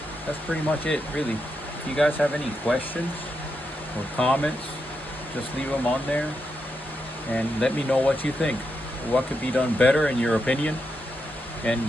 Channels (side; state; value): both; normal; correlation 0.84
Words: that's pretty much it really. If you guys have any questions or comments, just leave them on there and let me know what you think. What could be done better in your opinion, and